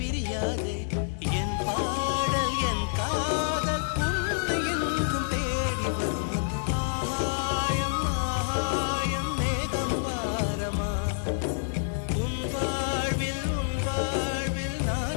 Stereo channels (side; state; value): right; silent; 59 dB below the other